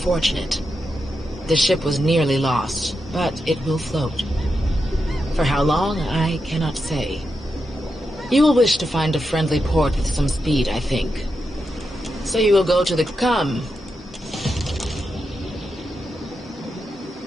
The ship was nearly lost, but it will float. For how long, I cannot say. You will wish to find a friendly port with some speed, I think. So you will go to the... Come.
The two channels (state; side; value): normal; both; correlation 0.87